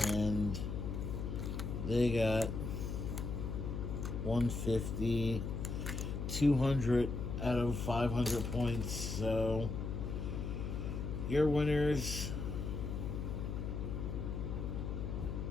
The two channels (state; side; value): noise; left; hum, 3 dB below the sound